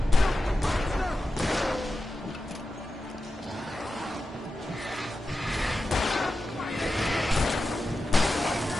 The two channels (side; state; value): both; normal; correlation 0.92